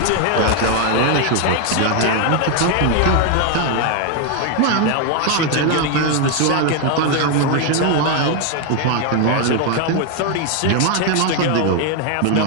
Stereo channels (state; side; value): different; both; correlation 0.01